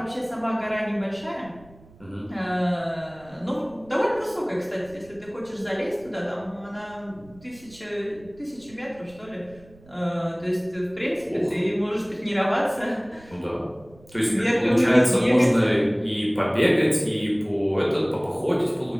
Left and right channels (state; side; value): noise; right; rumble, 25 dB below the sound